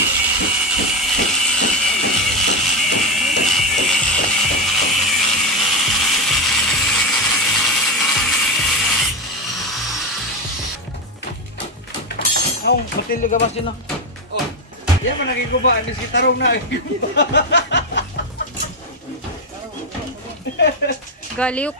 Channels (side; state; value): both; normal; correlation 0.10